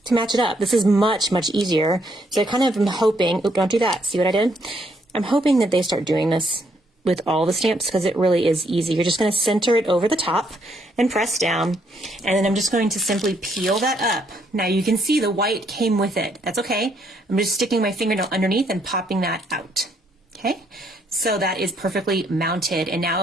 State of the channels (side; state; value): both; normal; correlation 0.72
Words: to match it up. This is much, much easier. So I kind of am hoping, oop, don't do that. See what I did? I'm hoping that they start doing this with all the stamps because it really is easy. You're just going to center it over the top and press down, and then I'm just going to simply peel that up. Now you can see the white came with it. That's okay. I'm just sticking my fingernail underneath and popping that out. Okay, so that is perfectly mounted, and now